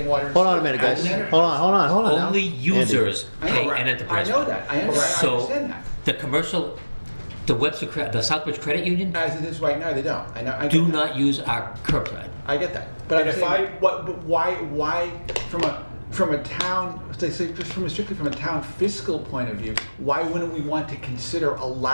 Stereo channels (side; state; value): both; inverted; correlation -1.00